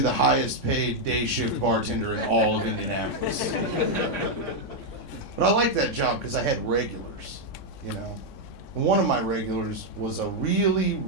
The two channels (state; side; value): late; right; 3.6 ms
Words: the highest paid day shift bartender in all of Indianapolis. But I liked that job because I had regulars, you know. One of my regulars was a really,